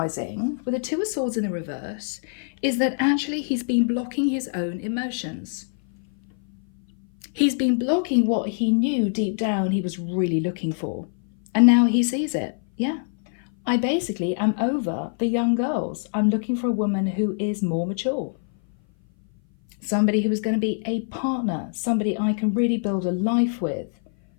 with the Two of Swords in the reverse is that actually he's been blocking his own emotions. He's been blocking what he knew deep down he was really looking for. And now he sees it. Yeah, I basically am over the young girls. I'm looking for a woman who is more mature. Somebody who is going to be a partner, somebody I can really build a life with.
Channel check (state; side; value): silent; right; 58 dB below the other